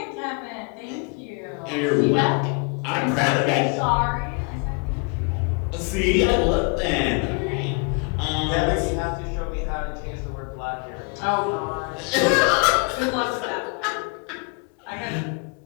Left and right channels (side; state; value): right; quieter; 33.7 dB